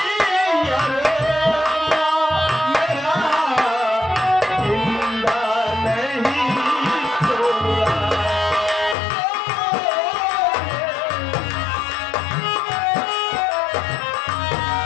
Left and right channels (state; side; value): drops out; right; at 9.0 s